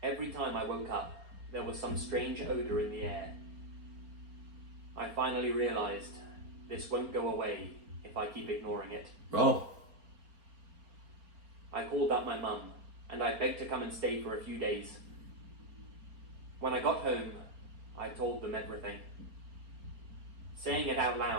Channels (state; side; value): late; left; 4.3 ms